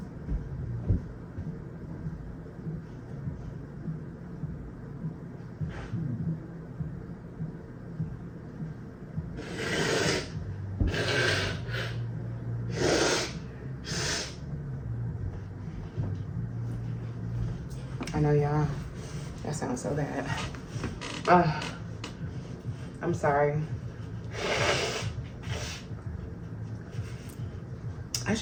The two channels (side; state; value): both; identical; correlation 1.00